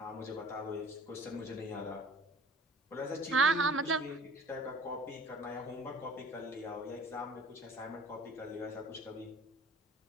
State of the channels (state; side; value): normal; both; correlation 0.45